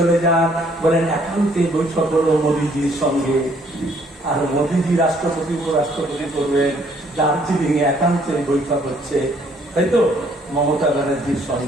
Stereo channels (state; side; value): normal; both; correlation 0.64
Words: যান, বলেন একান্তে বৈঠক করবো মোদীজির সঙ্গে। আর মোদীজি রাষ্ট্রপতি উপরাষ্ট্রপতি করবেন, দার্জিলিং এ একান্তে বৈঠক হচ্ছে, তাই তো মমতা ব্যানার্জির